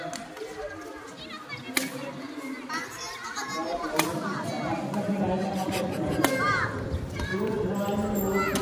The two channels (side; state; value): both; identical; correlation 1.00